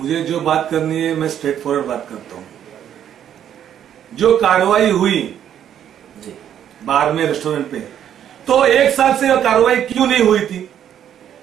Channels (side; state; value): left; quieter; 9.9 dB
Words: जो बात करनी है मैं स्ट्रेट फॉरवर्ड बात करता हूँ। जो कार्रवाई हुई जी बार में, रेस्टोरेंट पे, तो 1 साल से यह कार्रवाई क्यों नहीं हुई थी?